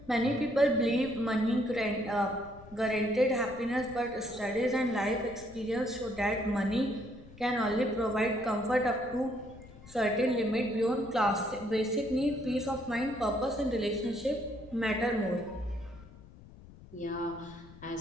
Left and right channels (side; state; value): left; noise; rumble, 19 dB below the sound